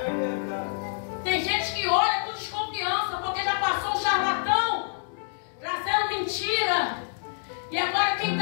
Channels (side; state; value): right; silent; digital silence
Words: verdade. Tem gente que olha com desconfiança porque já passou um charlatão trazendo mentira. E agora quem